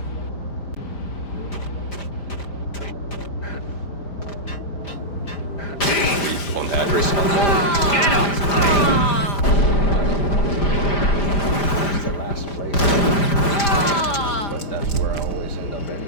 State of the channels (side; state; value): right; late; 5.0 ms